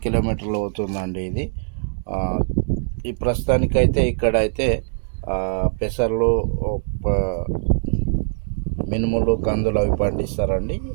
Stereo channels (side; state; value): left; silent; digital silence